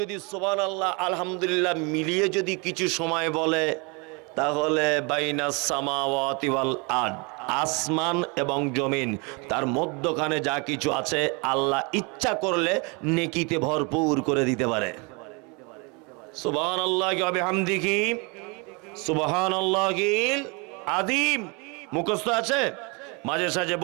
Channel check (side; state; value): left; quieter; 30.5 dB